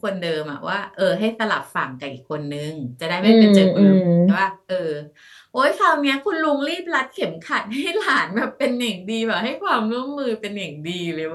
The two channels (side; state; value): both; identical; correlation 1.00